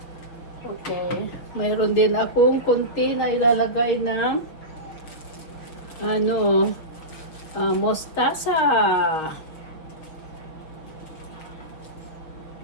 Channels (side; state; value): right; late; 6.4 ms